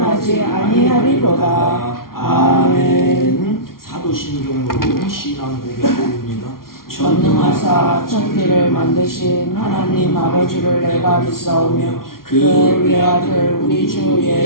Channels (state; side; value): late; right; 0.93 ms